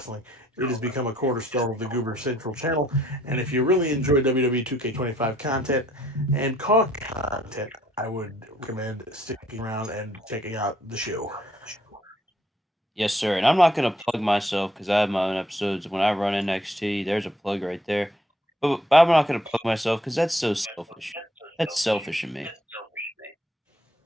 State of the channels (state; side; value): normal; both; correlation 0.65